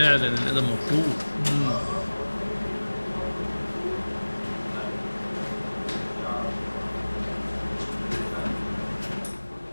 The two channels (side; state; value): both; inverted; correlation -1.00